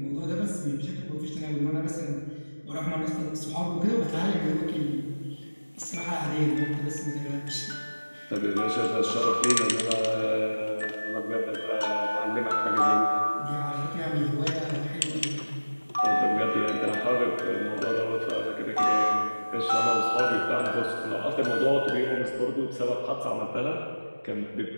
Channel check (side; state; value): both; inverted; correlation -1.00